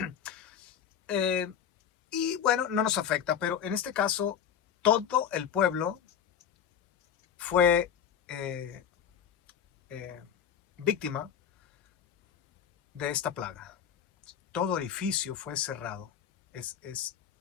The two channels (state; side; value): quieter; right; 8.5 dB